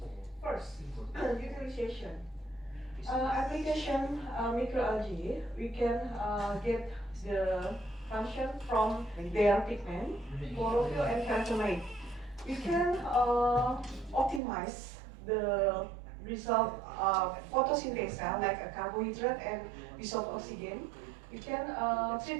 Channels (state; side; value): drops out; left; at 14.4 s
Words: first, utilization. Application microalgae, we can get the function from their pigment, chlorophyll, and carotenoid. We can optimize the result of photosynthesis like a carbohydrate and dissolved oxygen. We can